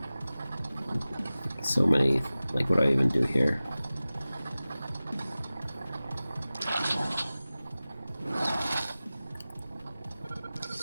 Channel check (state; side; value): inverted; both; correlation -0.97